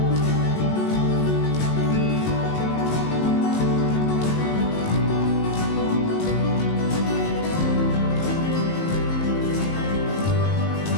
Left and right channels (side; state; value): right; late; 19 ms